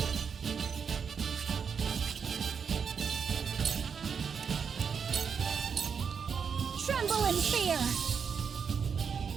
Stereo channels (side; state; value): left; quieter; 6.4 dB